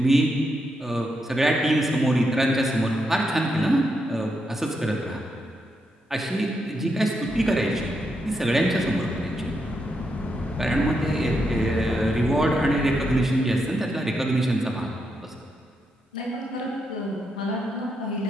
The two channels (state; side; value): normal; both; correlation 0.82